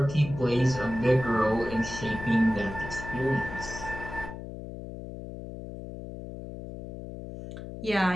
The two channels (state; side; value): noise; left; hum, 10 dB below the sound